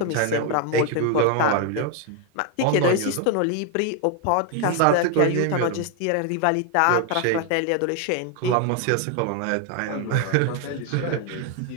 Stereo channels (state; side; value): different; both; correlation 0.01